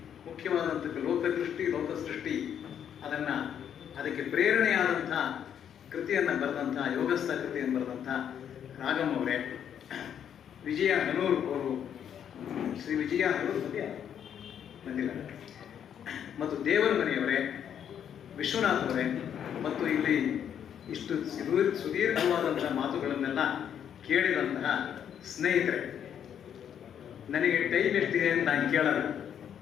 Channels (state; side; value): quieter; right; 8.9 dB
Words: ಮುಖ್ಯವಾದಂಥ ಲೋಕದೃಷ್ಟಿ ಲೋಕಸೃಷ್ಟಿ ಅದಕ್ಕೆ ಪ್ರೇರಣೆಯಾದಂಥ ಕೃತಿಯನ್ನು ಬರೆದಂಥ ಯೋಗಸ್ಥ ಕೃತಿಯನ್ನು ಬರೆದಂಥ ರಾಗಮ್ ಅವರೇ, ವಿಜಯ ಹನೂರು ಅವರು, ಶ್ರೀ ವಿಜಯ ಹನೂರು ಬಂದಿಲ್ಲ, ಮತ್ತು ದೇವರ ಮನೆಯವರೇ, ವಿಶ್ವನಾಥ್ ಅವರೇ, ಮತ್ತು ಇಲ್ಲಿ ಇಷ್ಟು ಸುದೀರ್ಘವಾದಂತಹ ಮಾತುಗಳನ್ನೆಲ್ಲ ಕೇಳಿದಂತಹ ಸ್ನೇಹಿತರೆ, ನನಗೆ ಟೈಮ್ ಎಷ್ಟಿದೆ ಅಂತ ನಾನು ಕೇಳಲ್ಲ.